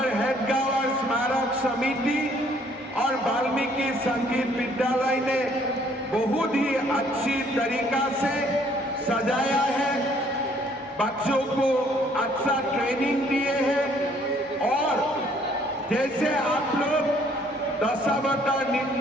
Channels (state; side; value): normal; both; correlation 0.62